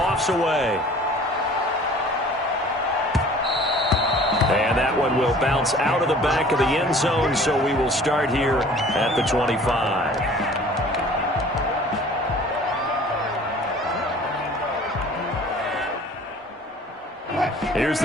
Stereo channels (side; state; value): both; normal; correlation 0.49